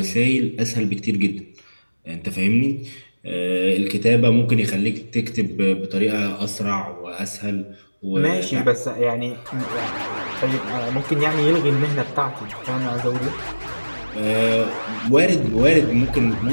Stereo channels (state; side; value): inverted; both; correlation -1.00